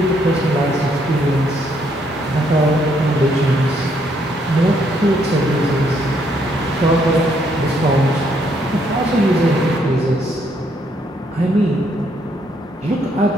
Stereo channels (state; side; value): normal; both; correlation 0.71